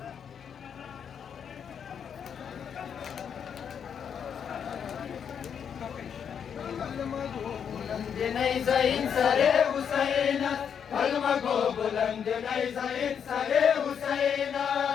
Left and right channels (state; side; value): quieter; right; 7.7 dB